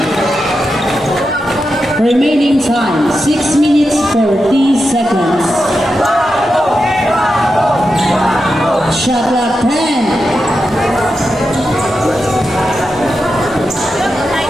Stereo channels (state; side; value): normal; both; correlation 0.88